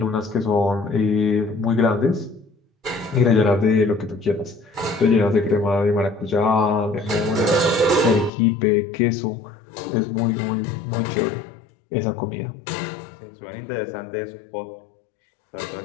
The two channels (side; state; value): right; drops out; at 8.3 s